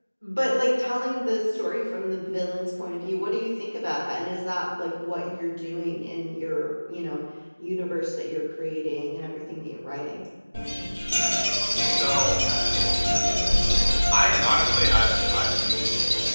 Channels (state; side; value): inverted; both; correlation -1.00